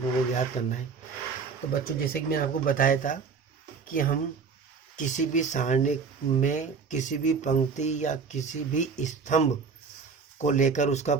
को ज्ञात करना है। तो बच्चों जैसे कि मैंने आपको बताया था कि हम किसी भी सारणी में किसी भी पंक्ति या किसी भी स्तंभ को लेकर उसका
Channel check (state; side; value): quieter; left; 5.3 dB